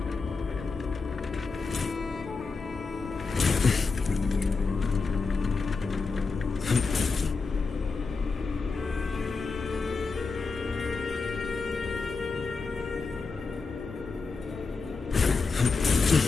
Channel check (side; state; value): right; quieter; 4.4 dB